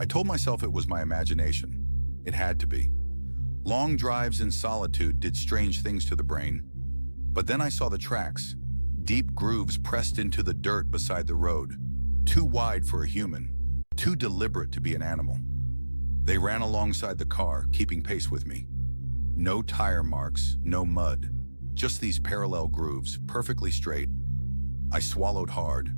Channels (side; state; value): both; inverted; correlation -1.00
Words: told myself it was my imagination. It had to be. Long drives in solitude did strange things to the brain. But then I saw the tracks, deep grooves pressed into the dirt beside the road, too wide for a human, too deliberate to be an animal. They ran alongside the car, keeping pace with me. No tire marks, no mud, just these parallel grooves, perfectly straight. I swallowed hard,